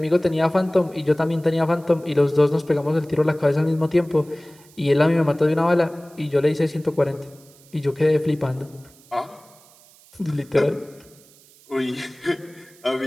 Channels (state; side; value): noise; right; hiss, 27 dB below the sound